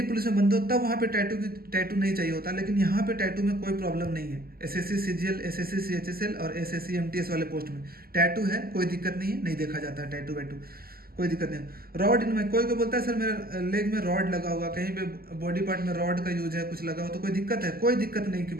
पुलिस में बंद हो, तब वहाँ पे टैटू नहीं चाहिए होता, लेकिन यहाँ पे टैटू में कोई प्रॉब्लम नहीं है। SSC CGL, SSC CHSL और SSC MTS वाले पोस्ट में टैटू है, कोई दिक्कत नहीं है, नहीं देखा जाता है टैटू वैटू, कोई दिक्कत नहीं। रॉड इनमें कोई बोलता है सर मेरा लेग में रॉड लगा हुआ, कहीं पे बॉडी पार्ट में रॉड का यूज है, कुछ लगा हो तो कोई दिक्कत है? कोई दिक्कत नहीं की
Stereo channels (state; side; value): late; left; 0.44 ms